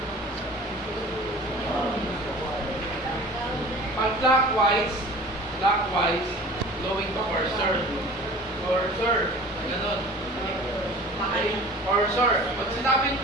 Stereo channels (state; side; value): normal; both; correlation 0.42